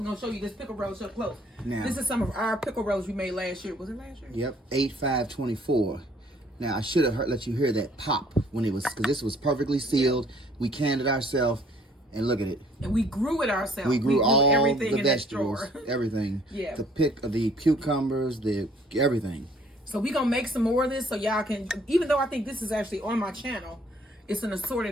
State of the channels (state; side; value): normal; both; correlation 0.59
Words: gonna show you this pickle relish up close. Now, this is some of our pickle relish we made last year. Was it last year? Yep, 8/5/24. Now I should have let you hear that pop when it was, because this was perfectly sealed. We canned it ourselves, and look at it. And we grew it ourselves. We grew all everything the vegetables, everything. Yeah. The cucumbers, everything. So we gonna make some more of this, so y'all can. Even though I think this is actually on my channel, it's an